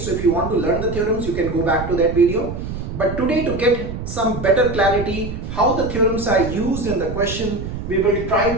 if you want to learn the theorems you can go back to that video, but today to get some better clarity how the theorems are used in the question, we will try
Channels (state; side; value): noise; right; rumble, 7 dB below the sound